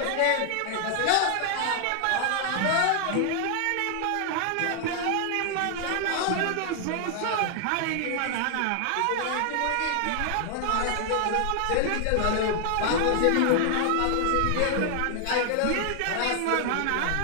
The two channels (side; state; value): both; different; correlation 0.00